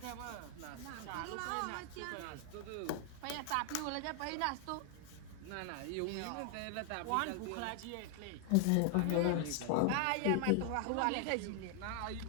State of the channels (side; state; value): both; different; correlation 0.00